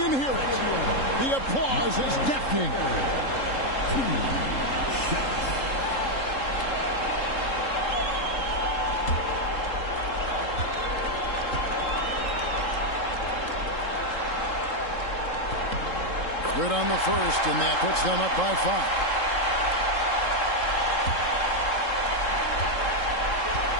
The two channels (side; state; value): right; late; 3.7 ms